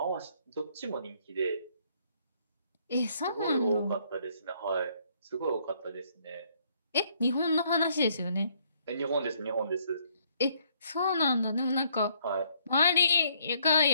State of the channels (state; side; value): inverted; both; correlation -0.67